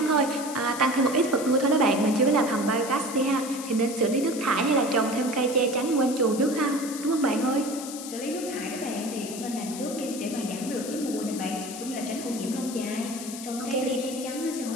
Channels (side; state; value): left; noise; hiss, 10 dB below the sound